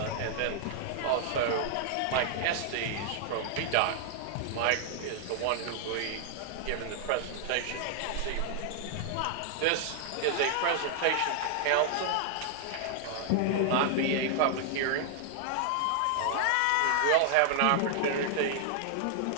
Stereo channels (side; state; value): both; different; correlation 0.00